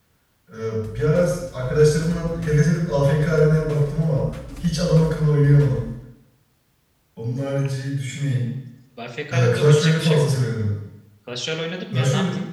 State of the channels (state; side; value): identical; both; correlation 1.00